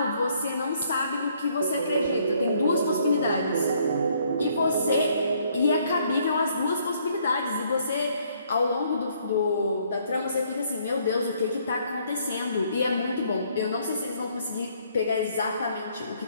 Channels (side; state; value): both; inverted; correlation -0.66